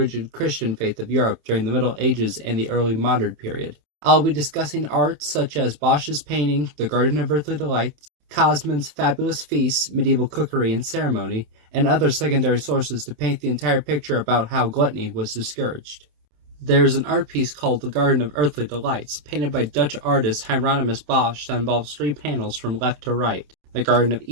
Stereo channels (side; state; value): left; late; 27 ms